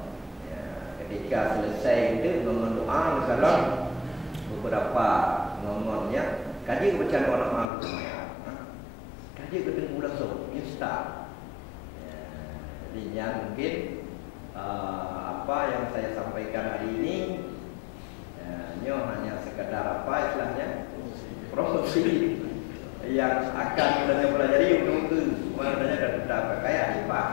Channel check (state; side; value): drops out; right; at 7.7 s